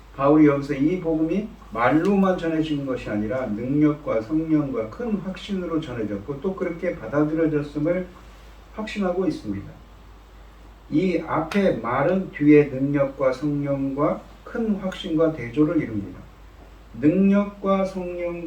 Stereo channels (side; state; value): both; identical; correlation 1.00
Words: 바울이 여기서 이 복음이 말로만 전해진 것이 아니라 능력과 성령과 큰 확신으로 전해졌고 또 그렇게 받아들여졌음을 확신하고 있습니다. 이 앞에 말은 뒤에 능력과 성령과 큰 확신과 대조를 이룹니다. 능력과